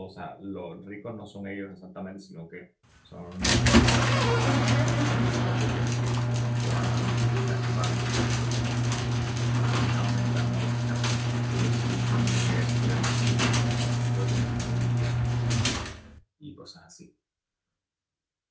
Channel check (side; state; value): both; identical; correlation 1.00